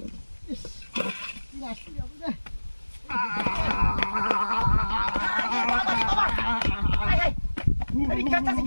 ইস কি আসছে রে এই কাটা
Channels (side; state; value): both; inverted; correlation -1.00